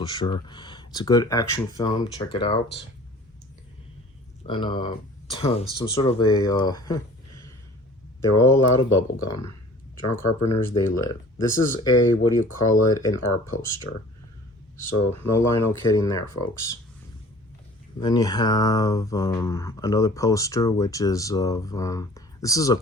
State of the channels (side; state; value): both; normal; correlation 0.47